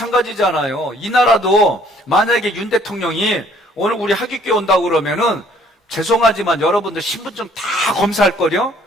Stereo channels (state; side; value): normal; both; correlation 0.60